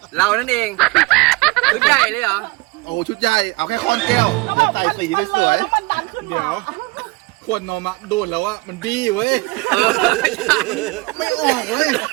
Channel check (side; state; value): left; quieter; 24.2 dB